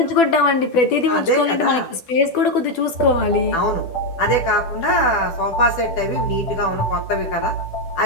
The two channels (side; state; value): right; late; 10 ms